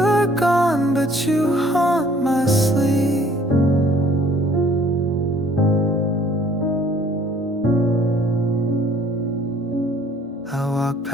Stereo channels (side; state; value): both; normal; correlation 0.58